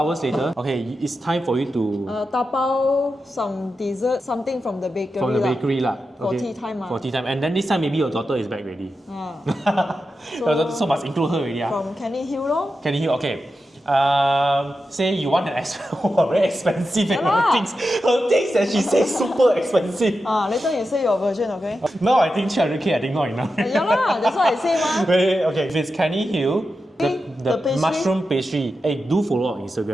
later, okay, it's time for you to tapao some dessert, something from the bakery. For tea time. For tea time. And then this time maybe your daughter is back already. So must include her already. From Canning Hill lor. Canning Hill, okay. Say you want an very expensive and her things that she says super expensive. Later you say your version, okay? No, I think 300k I think not enough. Yeah, that's what I say Okay, if it's Canning Hill, the mushroom pastry. Hey, do follow on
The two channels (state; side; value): normal; both; correlation 0.90